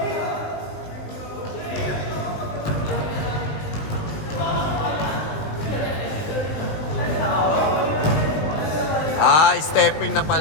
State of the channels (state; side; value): late; right; 19 ms